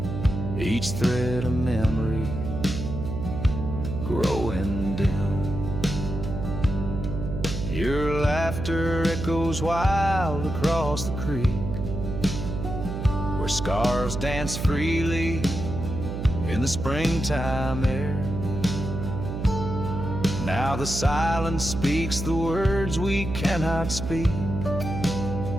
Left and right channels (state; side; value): noise; right; hum, 5 dB below the sound